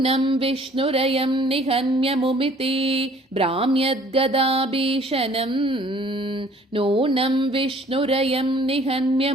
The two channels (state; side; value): normal; both; correlation 0.55